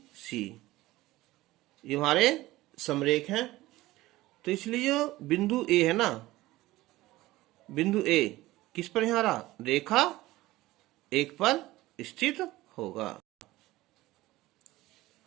सी ये हमारे समरेख हैं, तो इसलिए जो बिंदु ए है ना, बिंदु ए किस पर यहाँ रहा, रेखा 1 पर स्थित होगा।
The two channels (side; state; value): left; quieter; 17.7 dB